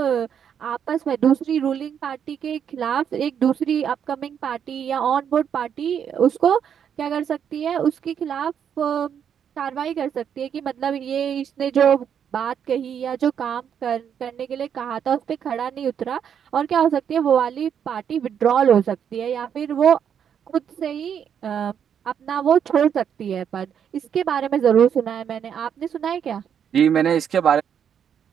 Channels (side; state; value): left; quieter; 8.3 dB